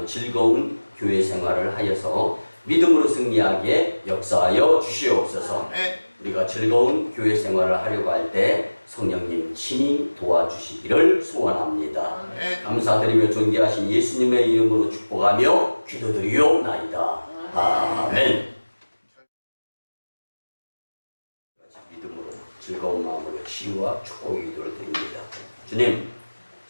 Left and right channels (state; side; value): inverted; both; correlation -1.00